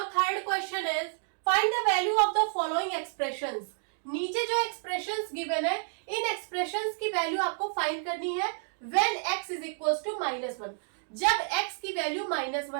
third question is find the value of the following expressions. नीचे जो एक्सप्रेशंस गिवन है, इन एक्सप्रेशंस की वैल्यू आपको फाइंड करनी है when x is equals to -1, जब x की वैल्यू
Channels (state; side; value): silent; left; digital silence